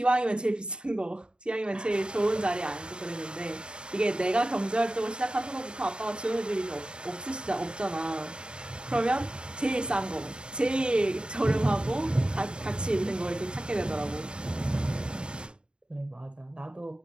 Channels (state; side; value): late; left; 0.051 ms